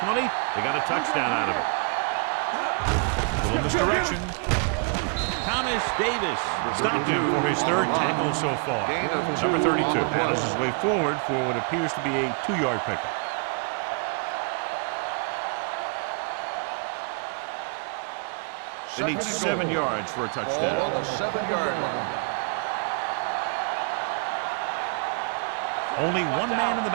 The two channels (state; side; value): quieter; left; 37.2 dB